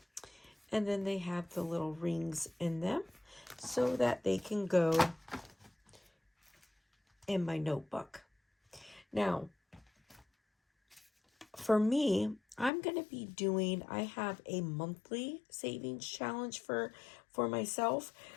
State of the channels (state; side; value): drops out; right; at 12.7 s